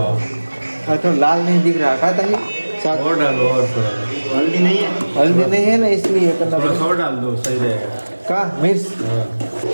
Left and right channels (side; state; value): both; inverted; correlation -1.00